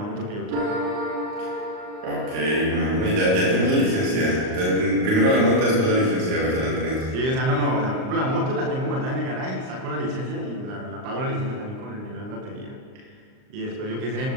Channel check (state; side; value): late; left; 38 ms